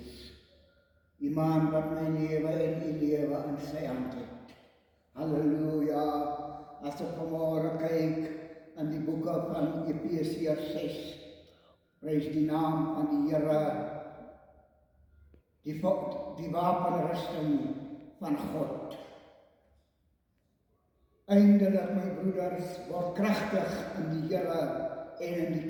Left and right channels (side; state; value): both; identical; correlation 1.00